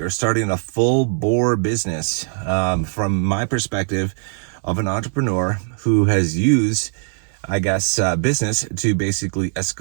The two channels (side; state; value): left; silent; 65 dB below the other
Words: starting a full bore business from my perspective of an entrepreneur who has used, business to basically